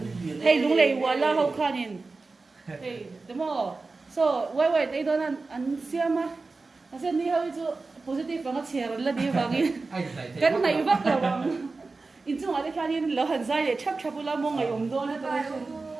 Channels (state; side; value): quieter; left; 3.8 dB